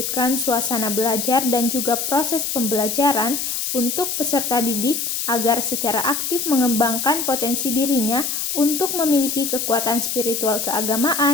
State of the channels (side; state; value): left; noise; hiss, 2 dB below the sound